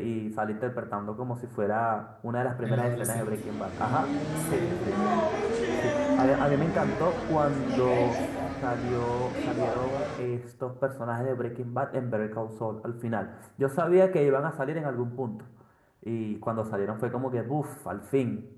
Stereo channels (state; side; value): identical; both; correlation 1.00